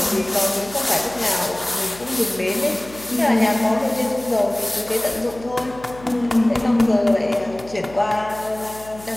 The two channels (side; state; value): left; noise; hum, 19 dB below the sound